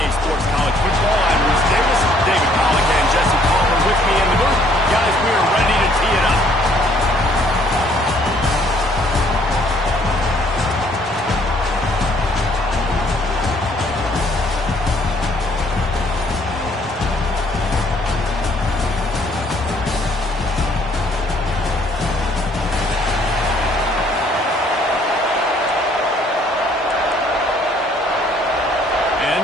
Sports College Football. I'm Bruce Davis, David Pollock, and Jesse Palmer with me in the booth. Guys, we are ready to tee it up.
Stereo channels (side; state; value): both; normal; correlation 0.63